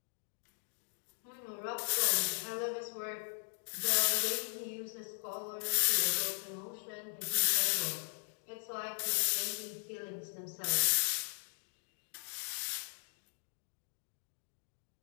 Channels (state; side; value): silent; right; digital silence